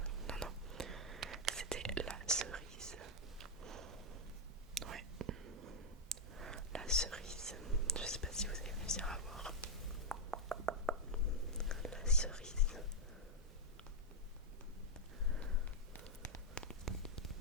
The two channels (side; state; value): both; normal; correlation -0.01